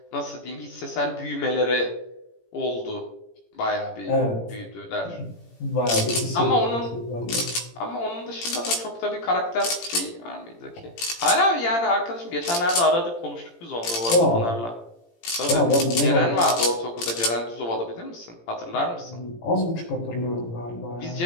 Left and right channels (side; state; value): right; late; 17 ms